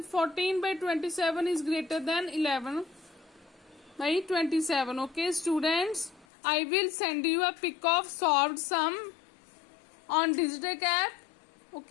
14 by 27 is greater than 11 by 27. Okay students, I will send you a pic of solved sum on Digitech app.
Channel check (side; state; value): right; drops out; at 6.2 s